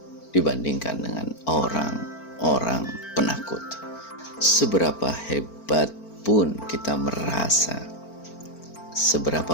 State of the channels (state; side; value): late; right; 4.4 ms